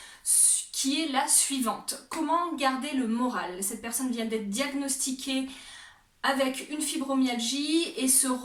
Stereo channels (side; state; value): both; identical; correlation 1.00